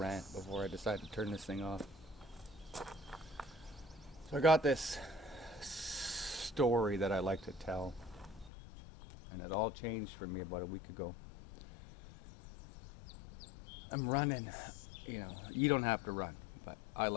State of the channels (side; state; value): right; drops out; at 8.5 s